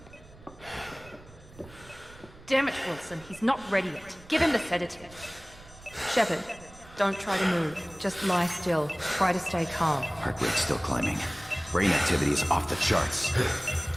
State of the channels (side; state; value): right; noise; rumble, 21 dB below the sound